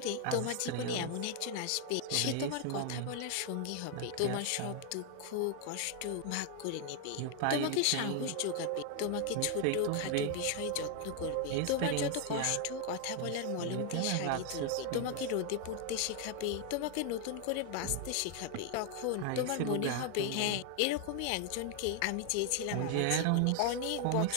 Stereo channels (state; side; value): different; both; correlation 0.00